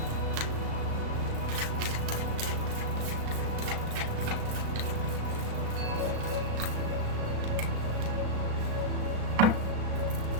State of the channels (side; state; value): left; late; 36 ms